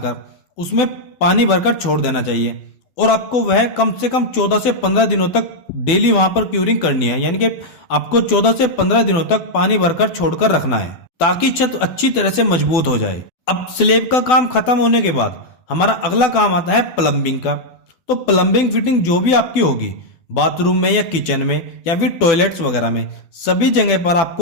उसमें पानी भरकर छोड़ देना चाहिए, और आपको वह कम से कम 14 से 15 दिनों तक डेली वहां पर क्यूरिंग करनी है, यानी कि आपको 14 से 15 दिनों तक पानी भरकर छोड़कर रखना है, ताकि छत अच्छी तरह से मजबूत हो जाए। अब स्लैब का काम खत्म होने के बाद हमारा अगला काम आता है प्लम्बिंग का। तो प्लम्बिंग फिटिंग जो भी आपकी होगी, बाथरूम में या किचन में या फिर टॉयलेट्स वगैरह में, सभी जगह पर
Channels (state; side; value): late; right; 12 ms